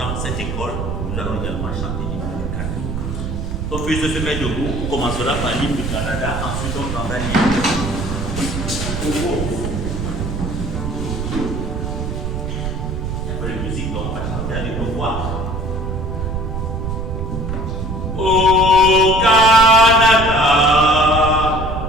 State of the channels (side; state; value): right; noise; rumble, 4 dB below the sound